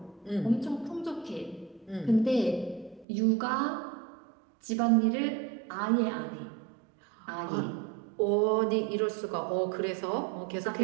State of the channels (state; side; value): drops out; left; at 3.1 s